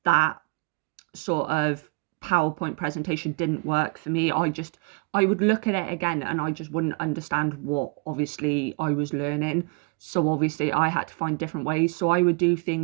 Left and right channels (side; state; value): left; quieter; 32.9 dB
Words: that sort of PowerPoint presentation didn't work for me. I would look at it again and I just wouldn't understand what obviously I was learning. So obviously I had to find different ways. So I would do